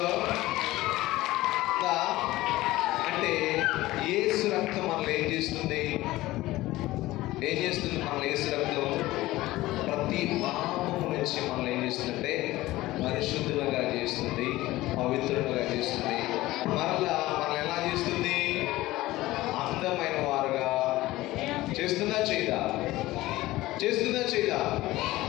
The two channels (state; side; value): quieter; right; 17.6 dB